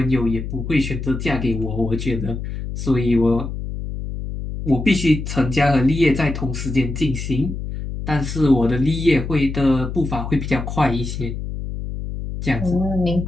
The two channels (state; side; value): noise; left; hum, 6 dB below the sound